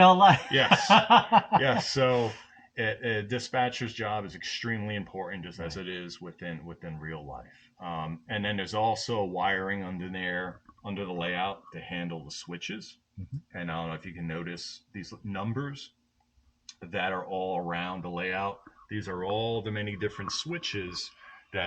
life. Yes. Yes. So a dispatcher's job is extremely important, just as Right. it is within real life. And then there's also wiring under there under the layout to handle the switches. Hmm. And I don't know if you can notice these numbers that are all around the layout. These are all the many different switches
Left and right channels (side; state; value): both; identical; correlation 1.00